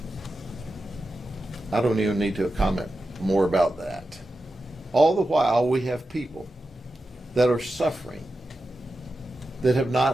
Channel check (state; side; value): normal; both; correlation 0.91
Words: I don't even need to comment more about that. All the while, we have people that are suffering, that have